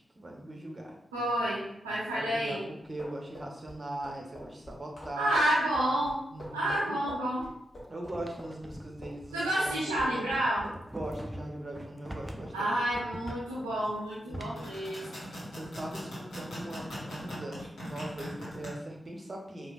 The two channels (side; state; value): both; normal; correlation 0.83